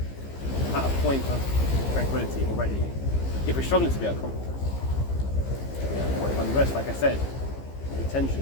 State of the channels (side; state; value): right; late; 15 ms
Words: at a point of tranquility already if we're struggling to be at a comfort zone. Or if unrest, like I said, the